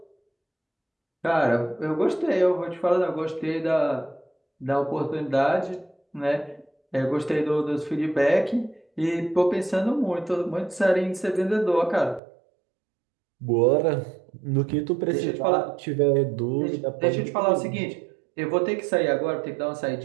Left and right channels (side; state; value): left; drops out; at 12.2 s